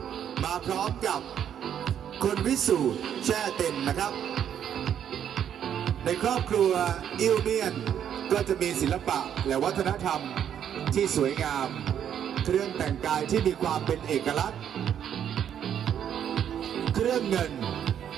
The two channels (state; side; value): quieter; left; 9.3 dB